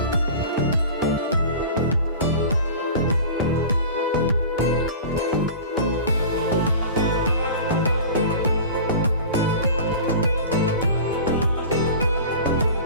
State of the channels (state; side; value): inverted; both; correlation -0.36